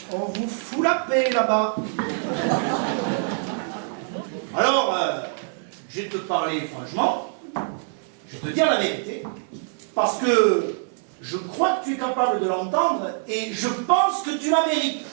on vous fout la paix là-bas. Alors, je vais te parler franchement, je vais te dire la vérité, parce que je crois que tu es capable de l'entendre et je pense que tu la mérites.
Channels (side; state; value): left; silent; 61 dB below the other